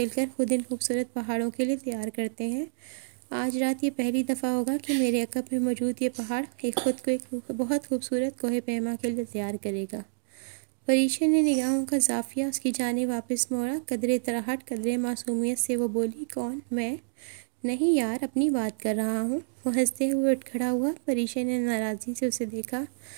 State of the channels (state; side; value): silent; left; digital silence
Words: खुद इन खूबसूरत पहाड़ों के लिए तैयार करते हैं। आज रात ये पहली दफ़ा होगा कि मेरे अकब में मौजूद ये पहाड़ खुद को एक बहुत खूबसूरत कोहे पैमा के लिए तैयार करेगा। परीक्षा ने निगाहों का जाफिया उसकी जाने वापस मोड़ा। कदरे तराहट कदरे मासूमियत से वो बोली, कौन? मैं? नहीं यार, अपनी बात कर रहा हूँ। वो हंसते हुए उठ खड़ा हुआ। परीक्षा ने नाराज़गी से उसे देखा।